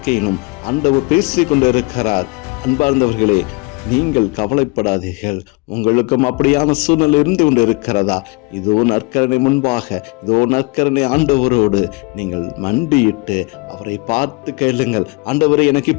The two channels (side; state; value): right; quieter; 27.6 dB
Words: ஆண்டவர் பேசிக் கொண்டிருக்கிறார். அன்பார்ந்தவர்களே, நீங்கள் கவலைப்படாதீர்கள். உங்களுக்கும் அப்படியான சூழ்நிலை இருந்து கொண்டு இருக்கிறதா? இதோ நற்கருணை முன்பாக, இதோ நற்கருணை ஆண்டவரோடு நீங்கள் மண்டியிட்டு அவரை பார்த்து கேளுங்கள். ஆண்டவரே, எனக்கு